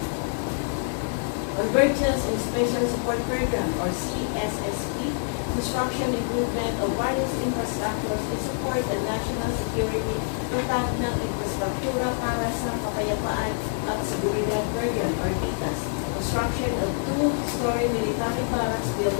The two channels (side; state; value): right; silent; 61 dB below the other